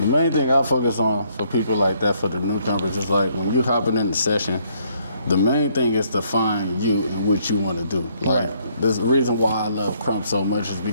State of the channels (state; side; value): inverted; both; correlation -0.68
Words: main thing I focus on for people like that, for the newcomers, is like when you're hopping in the session, the main thing is to find you and what you want to do. Like, the reason why I love Krump so much is